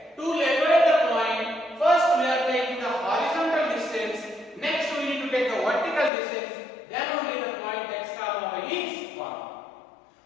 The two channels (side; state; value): right; drops out; at 6.1 s